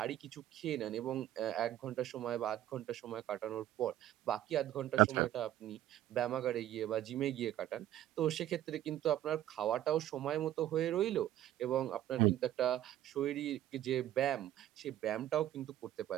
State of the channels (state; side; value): quieter; left; 13.0 dB